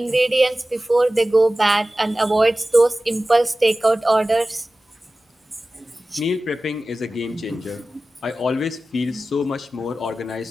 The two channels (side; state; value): both; normal; correlation 0.96